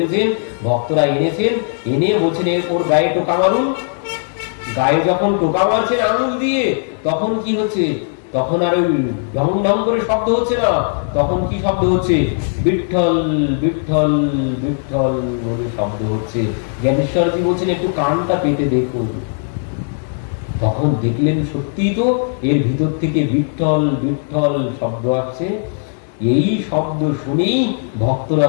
ভক্তরা এনেছেন, এনে বলছেন ওর গায়ে টোকা মারুন। গায়ে যখন টোকা মারছেন আঙুল দিয়ে, তখন কি হচ্ছে? তখন আর ওই ঢং ঢং করে শব্দ হচ্ছে না, তখন কি শব্দ হচ্ছে? বিঠ্ঠল বিঠ্ঠল বিঠ্ঠল বলে শব্দ হচ্ছে। জ্ঞানেশ্বরজি বলছেন একটু কানটা পেতে দেখুন। তখন দেখলেন সত্যি তো এর ভিতর থেকে বিঠ্ঠল বিঠ্ঠল শব্দ আসছে। এই শব্দ শুনেই ভক্তরা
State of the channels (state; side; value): silent; right; digital silence